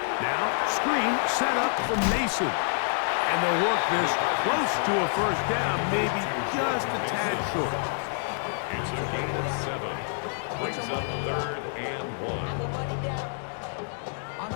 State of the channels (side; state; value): right; silent; digital silence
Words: screen set up from Mason. And they'll work this close to a first down, maybe just a tad short. It's a gain of 7. Brings up third and 1.